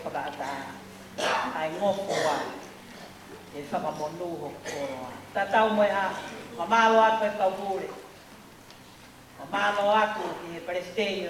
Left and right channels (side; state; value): both; identical; correlation 1.00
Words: whakaata, ai ngofo wa, e whakamonu ho koroa. Tatau moe ha, mamalo atu e kaupure. Mamalo atu ki he Palestine